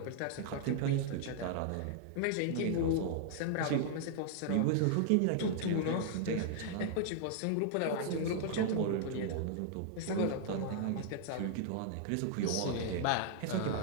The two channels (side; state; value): both; different; correlation -0.01